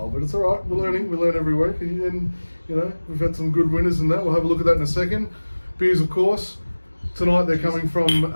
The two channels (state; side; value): inverted; both; correlation -1.00